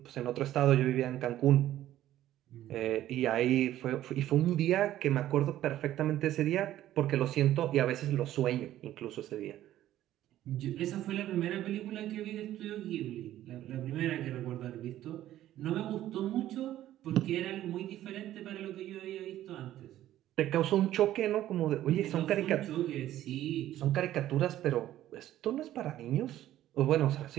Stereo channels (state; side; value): quieter; left; 13.2 dB